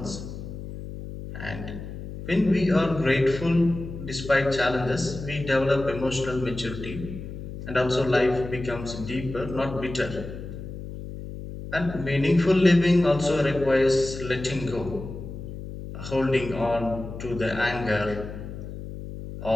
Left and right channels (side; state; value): left; noise; hum, 10 dB below the sound